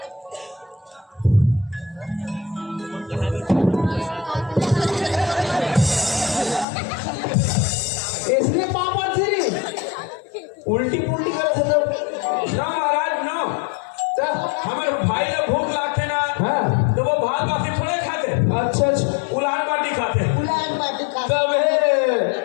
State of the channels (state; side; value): drops out; right; at 6.7 s